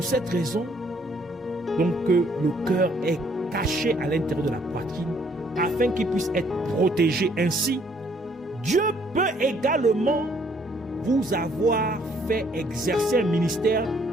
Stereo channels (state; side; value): normal; both; correlation 0.65